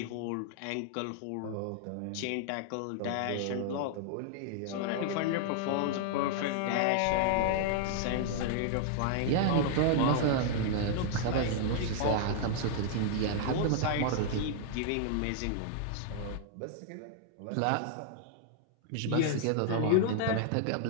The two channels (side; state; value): both; different; correlation -0.01